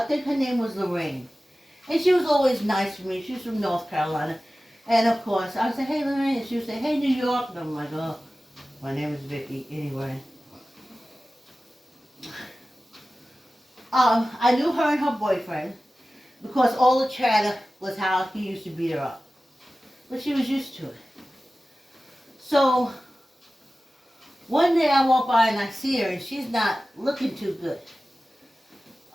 think her name was Lorraine, and she was always nice to me. She was from North Carolina, and of course I would say, hey Lorraine, and she would say, hey New York, and I'm like, oh, my name is Vicki. Anyway, I knew her and her boyfriend because all the chatter was how he used to beat her up. But she was used to it. So one day I walk by and I see her and she's not looking too good.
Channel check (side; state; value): both; normal; correlation 0.96